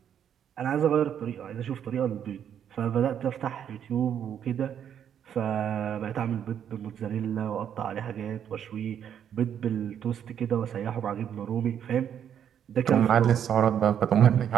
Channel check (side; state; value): left; quieter; 9.1 dB